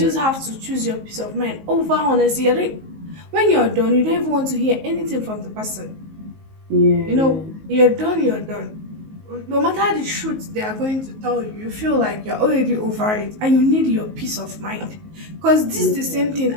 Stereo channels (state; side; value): late; left; 19 ms